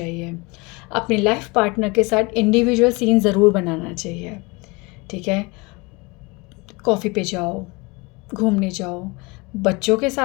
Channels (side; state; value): right; quieter; 26.3 dB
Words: अपने लाइफ पार्टनर के साथ इंडिविजुअल सीन ज़रूर बनाना चाहिए। ठीक है, कॉफ़ी पे जाओ, घूमने जाओ, बच्चों के